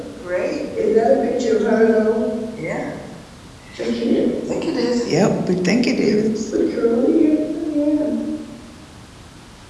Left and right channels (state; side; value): identical; both; correlation 1.00